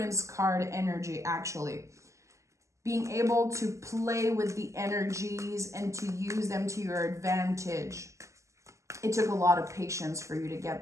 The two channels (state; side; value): late; left; 0.15 ms